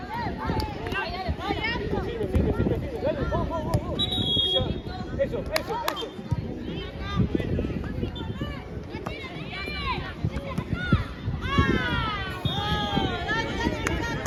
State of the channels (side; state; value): both; identical; correlation 1.00